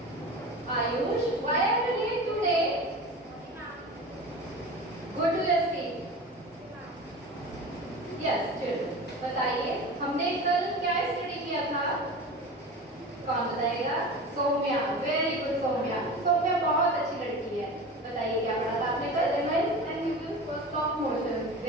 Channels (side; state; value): both; normal; correlation 0.32